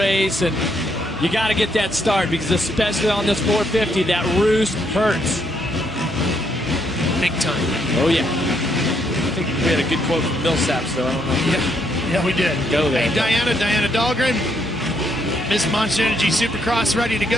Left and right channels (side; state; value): both; normal; correlation 0.74